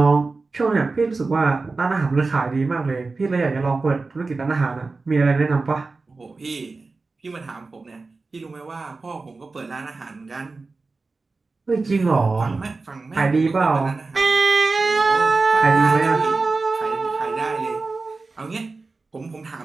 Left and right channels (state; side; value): quieter; left; 3.8 dB